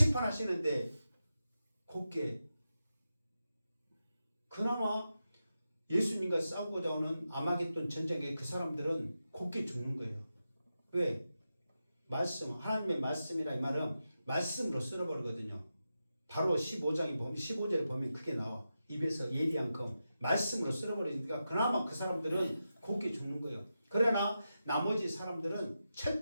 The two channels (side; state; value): both; inverted; correlation -0.90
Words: 곱게 그나마 예수님과 싸우고자 하는 아마겟돈 전쟁에 그 사람들은 곱게 죽는 거예요. 왜? 말씀, 하나님의 말씀이라 이 말은 말씀으로 쓸어버리거든요. 바로 15절에 보면 그게 나와. 입에서 예리한 검. 말씀으로 쓸어버리니까 그나마 그 사람들은 곱게 죽는 거예요. 그러나 나머지 사람들은